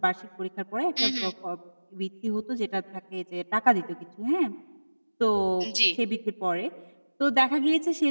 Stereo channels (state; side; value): inverted; both; correlation -1.00